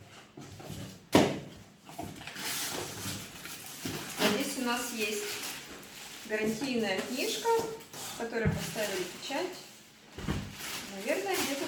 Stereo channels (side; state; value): both; identical; correlation 1.00